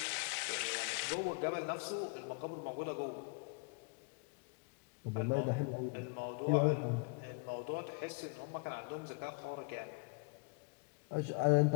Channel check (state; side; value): quieter; right; 32.2 dB